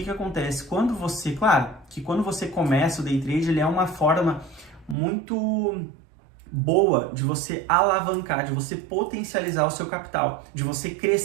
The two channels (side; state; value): left; drops out; at 5.0 s